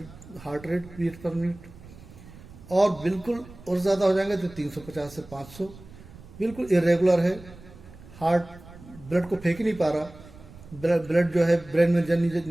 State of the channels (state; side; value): noise; right; rumble, 19 dB below the sound